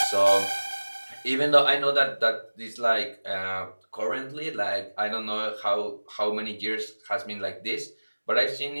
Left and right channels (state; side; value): inverted; both; correlation -1.00